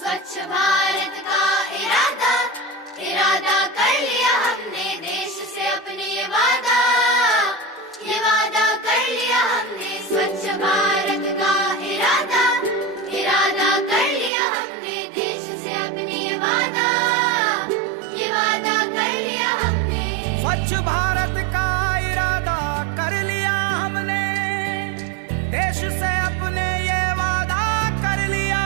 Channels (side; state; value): left; drops out; at 14.3 s